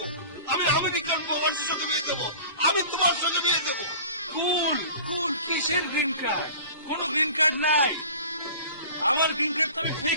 আমি আমেরিকান প্রবাসীর সঙ্গে বিয়ে দেবো। আমি তোমার সঙ্গে বিয়ে দেবো। কুল কুল কিসের গ্রিন কার্ড? কোনো গ্রিন কার্ড নাই। আমার গ্রিন কার্ড তো আমি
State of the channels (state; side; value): inverted; both; correlation -0.41